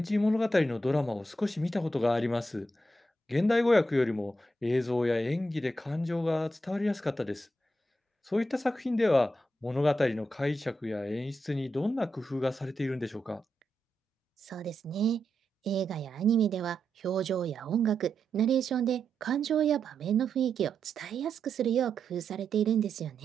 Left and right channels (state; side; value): normal; both; correlation 0.85